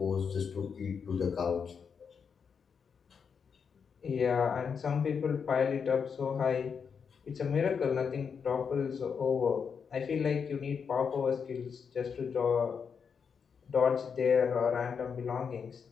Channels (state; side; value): quieter; right; 6.4 dB